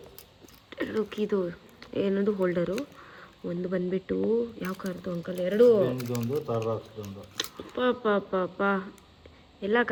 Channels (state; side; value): identical; both; correlation 1.00